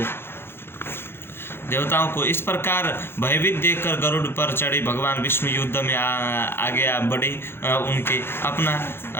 देवताओं को इस प्रकार भयभीत देखकर गरुड़ पर चढ़े भगवान विष्णु युद्ध में आगे आ बढ़े। उनके अपना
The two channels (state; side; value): late; right; 0.11 ms